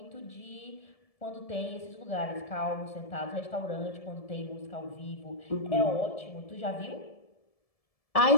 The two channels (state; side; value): late; right; 1.7 ms